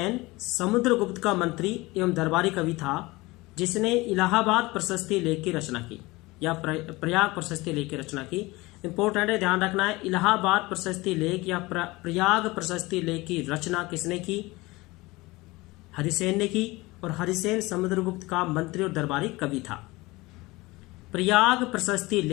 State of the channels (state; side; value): quieter; right; 21.7 dB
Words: समुद्रगुप्त का मंत्री एवं दरबारी कवि था, जिसने इलाहाबाद प्रशस्ति लेख की रचना की या प्रयाग प्रशस्ति लेख की रचना की। इंपॉर्टेंट है, ध्यान रखना है। इलाहाबाद प्रशस्ति लेख या प्रयाग प्रशस्ति लेख की रचना किसने की? हरिसेन ने की। और हरिसेन समुद्रगुप्त का मंत्री और दरबारी कवि था। प्रयाग प्रशस्ति